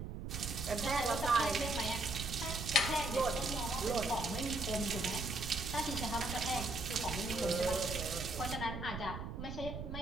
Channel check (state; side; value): noise; right; rumble, 6 dB below the sound